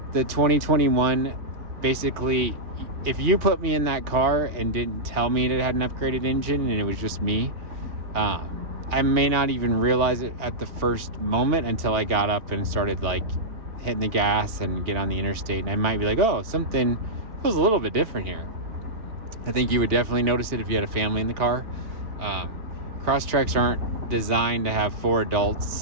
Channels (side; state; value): left; late; 4.2 ms